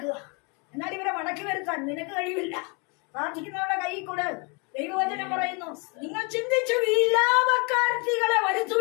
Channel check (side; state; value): right; quieter; 32.7 dB